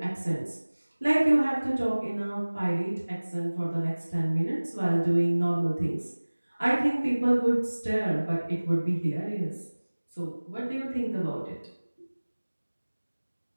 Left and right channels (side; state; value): both; inverted; correlation -1.00